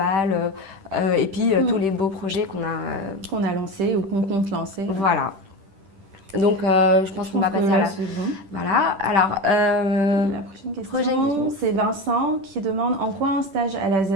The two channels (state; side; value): late; left; 10 ms